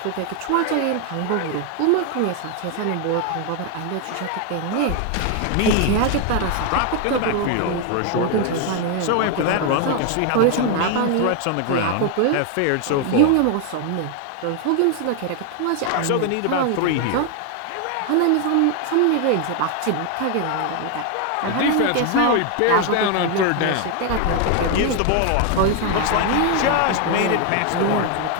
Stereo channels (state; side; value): different; both; correlation 0.01